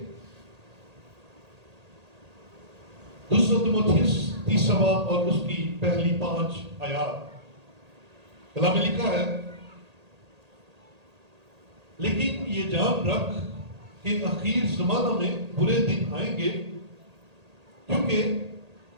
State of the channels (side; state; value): left; late; 1.8 ms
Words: دوسرا تیموتھیوس تیسرا باب اور اس کی پہلی 5 آیات. کلام میں لکھا ہے، لیکن یہ جان رکھ کہ اخیر زمانہ میں برے دن آئیں گے، کیونکہ